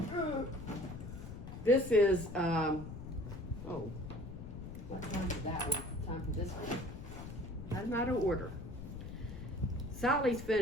this is oh, what time is that one? Time for this one. I'm out of order. Sally's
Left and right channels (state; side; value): noise; left; rumble, 10 dB below the sound